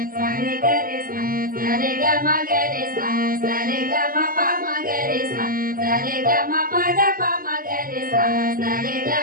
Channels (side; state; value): left; late; 0.41 ms